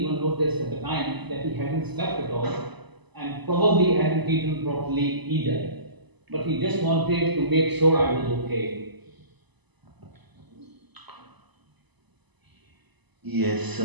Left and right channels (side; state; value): left; late; 1.0 ms